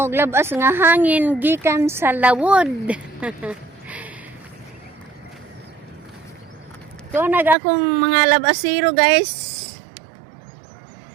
labas nga hangin gikan sa lawod. To nag akong mga labasiro guys.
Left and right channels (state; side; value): drops out; left; at 7.6 s